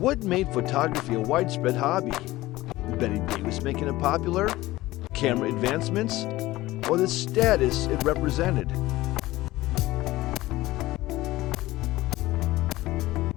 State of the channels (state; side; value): quieter; right; 17.7 dB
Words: made photography a widespread hobby? Betty Davis making it popular, camera advancements, or the status it represented?